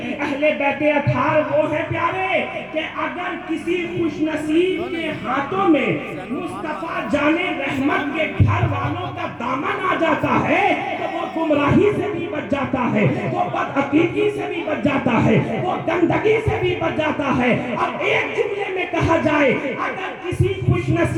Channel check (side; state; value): both; identical; correlation 1.00